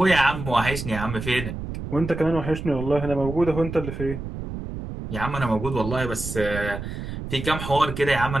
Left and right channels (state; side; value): noise; right; rumble, 7 dB below the sound